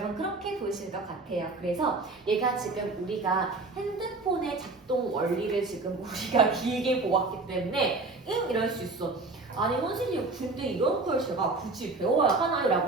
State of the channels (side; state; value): left; quieter; 3.5 dB